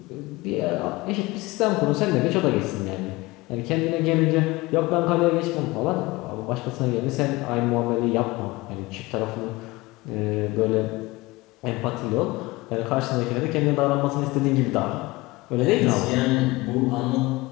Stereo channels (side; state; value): right; quieter; 21.7 dB